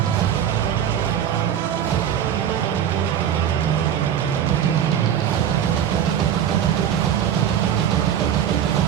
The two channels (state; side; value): quieter; left; 9.5 dB